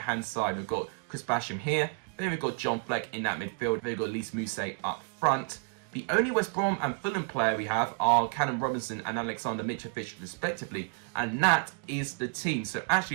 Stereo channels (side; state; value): left; quieter; 37.4 dB